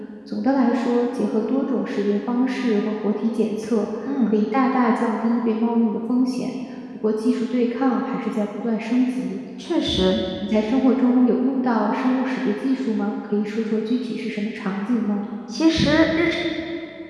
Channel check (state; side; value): identical; both; correlation 1.00